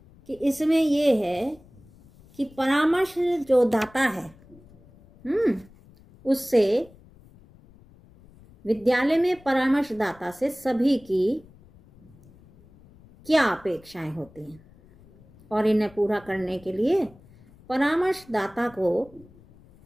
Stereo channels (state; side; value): noise; left; rumble, 26 dB below the sound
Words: कि इसमें ये है कि परामर्श जो दाता है उससे विद्यालय में परामर्शदाता से सभी की क्या अपेक्षाएं होती हैं और इन्हें पूरा करने के लिए परामर्शदाता को